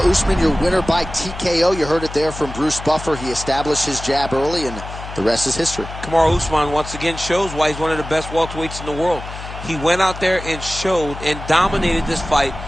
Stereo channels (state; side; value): noise; left; hum, 11 dB below the sound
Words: Usman, your winner by TKO. You heard it there from Bruce Buffer. He established his jab early, and the rest is history. Kamaru Usman once again shows why he's one of the best welterweights in the world. He went out there and showed and dominated this fight